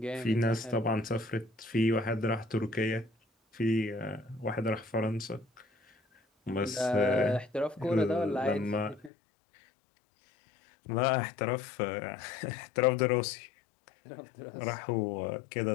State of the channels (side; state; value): right; drops out; at 9.1 s